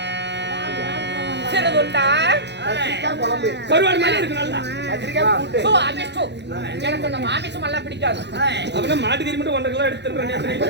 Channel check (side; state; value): left; late; 0.50 ms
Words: கருவாடு மாதிரி இருக்கு நல்லா சோ அபிஷ்டு எனக்கு அந்த மாமிசம் எல்லாம் பிடிக்காது அப்பனா மாட்டு கறி மட்டும் 1.5 கிலோ எடுத்துறேன்